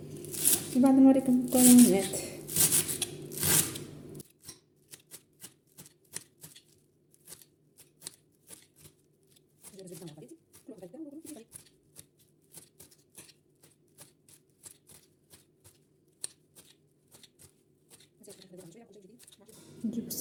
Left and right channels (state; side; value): identical; both; correlation 1.00